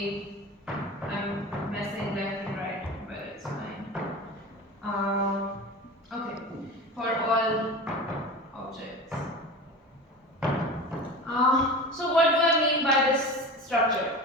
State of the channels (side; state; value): both; normal; correlation 0.32